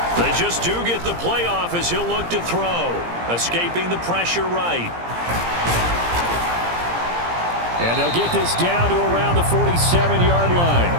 They just do get the play off as he'll look to throw. Escaping the pressure right. And they'll get this down to around the 47-yard line.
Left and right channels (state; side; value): late; left; 17 ms